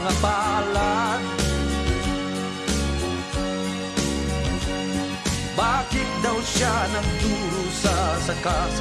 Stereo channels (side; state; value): both; identical; correlation 1.00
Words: palad. Bakit daw siya nagdurusa sa